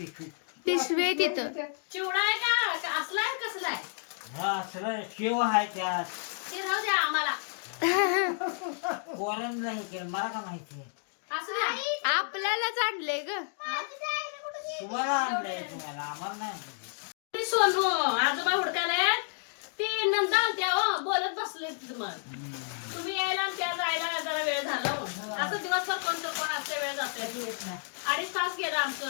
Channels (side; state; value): right; silent; digital silence